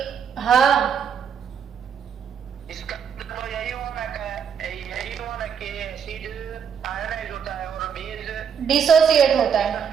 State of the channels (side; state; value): left; quieter; 7.4 dB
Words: हाँ, इसका तो यही हुआ ना कि एसिड आयोनाइज होता है और बेस डिसोसिएट होता है।